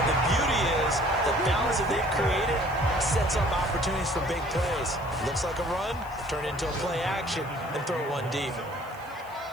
the beauty is the balance that they've created sets up opportunities for big plays. Looks like a run, turn into a play action, and throw one deep.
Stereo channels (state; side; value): noise; right; hiss, 25 dB below the sound